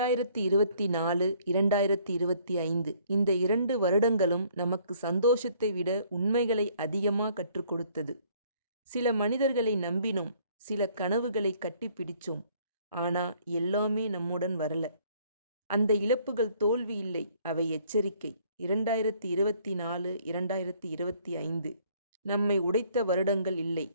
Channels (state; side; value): inverted; both; correlation -0.61